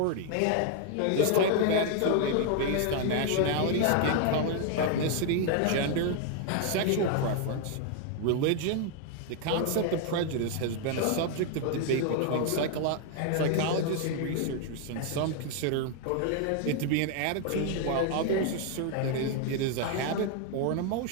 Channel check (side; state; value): both; different; correlation 0.00